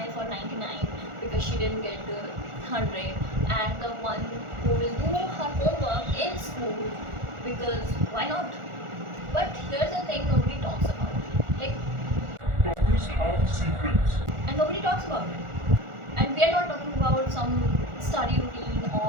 for 99 because she didn't get the 100, and the one who will do her homework in school because why not? But here's the thing nobody talks about. Like, Toppers have secrets. and nobody talks about it. And we are not talking about some study routine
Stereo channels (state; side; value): late; left; 1.4 ms